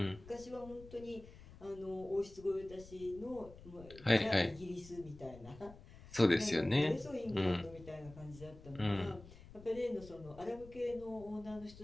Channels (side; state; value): left; noise; rumble, 18 dB below the sound